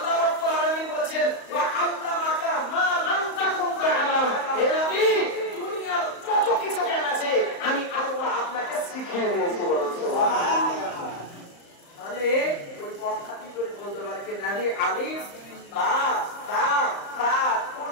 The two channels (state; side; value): late; right; 35 ms